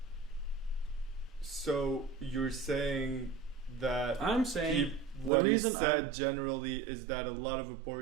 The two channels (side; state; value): left; drops out; at 5.3 s